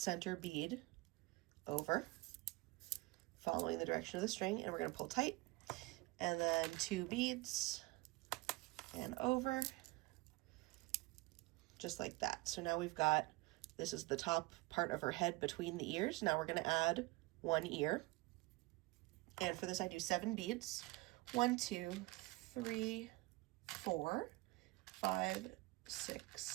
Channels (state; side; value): quieter; left; 22.1 dB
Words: bead over, following the direction of the string, and we're going to pull tight, and then 2 beads, and over, just like that. So now we've got, this is the top part of her head between the ears. Now we're going to add 1 ear, and for this I do 7 beads. 1, 2, 3, 4, 5,